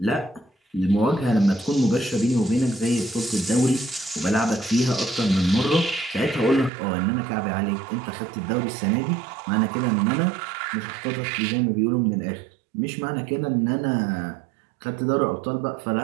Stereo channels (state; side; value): drops out; left; at 6.7 s